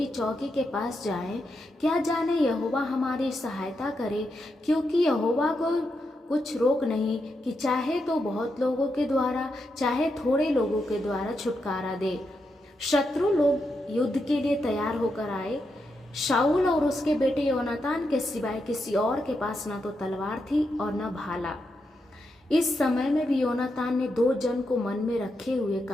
चौकी के पास जाएं, क्या जाने यहोवा हमारी सहायता करे, क्योंकि यहोवा को कुछ रोक नहीं कि चाहे तो बहुत लोगों के द्वारा चाहे थोड़े लोगों के द्वारा छुटकारा दे। शत्रु लोग युद्ध के लिए तैयार होकर आए। शाऊल और उसके बेटे योनातान के सिवाय किसी और के पास न तो तलवार थी और न भाला। इस समय में भी योनातान ने 2 जन को मन में रखे हुए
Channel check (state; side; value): normal; both; correlation 0.84